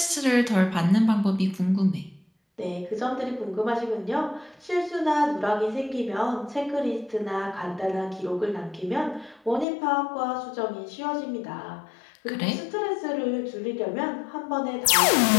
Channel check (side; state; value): right; drops out; at 9.7 s